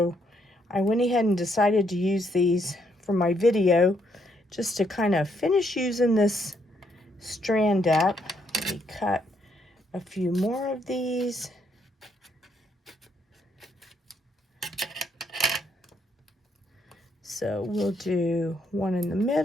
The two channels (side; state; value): both; normal; correlation 0.73